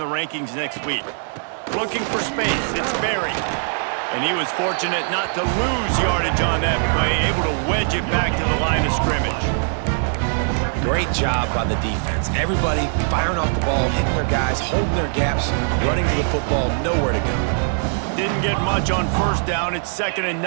rankings next week. Looking for space, it's Berry. And he was fortunate not to lose yardage on that play, able to wedge it back to the line of scrimmage. Great job by the defense. Everybody firing off the ball, hitting their guys, holding their gaps, running to the football, nowhere to go. Didn't get much on first down. It's 2nd and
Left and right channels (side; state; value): left; silent; 64 dB below the other